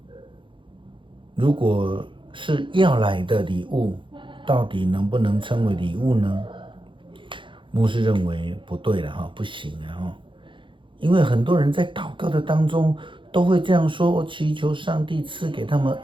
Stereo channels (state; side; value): late; left; 0.24 ms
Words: 如果是要来的礼物，到底能不能称为礼物呢？牧师认为不对了，不行了。因为很多人在祷告的当中都会这样说，我祈求上帝赐给他们